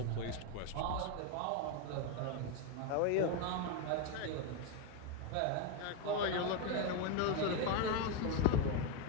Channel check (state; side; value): different; both; correlation 0.02